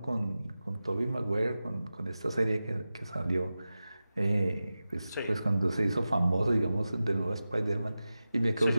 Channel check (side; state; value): both; inverted; correlation -0.94